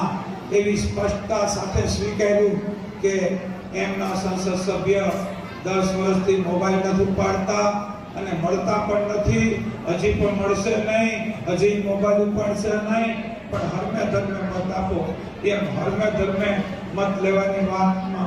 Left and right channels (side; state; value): both; identical; correlation 1.00